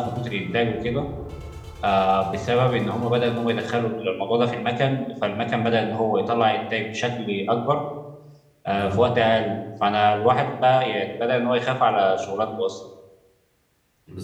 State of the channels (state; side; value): identical; both; correlation 1.00